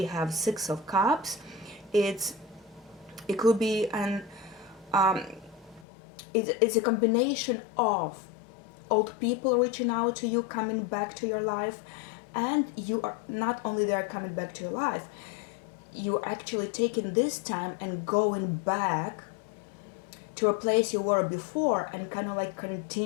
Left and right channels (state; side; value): drops out; right; at 5.9 s